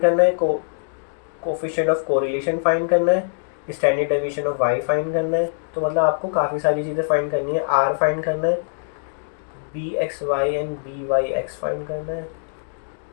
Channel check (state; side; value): silent; right; digital silence